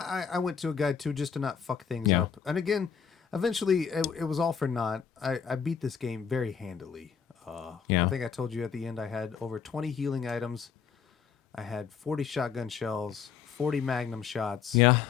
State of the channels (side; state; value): right; quieter; 7.0 dB